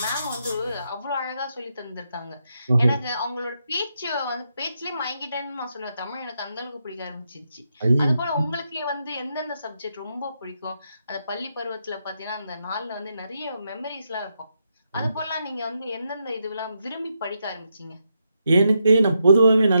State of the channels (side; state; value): both; inverted; correlation -0.82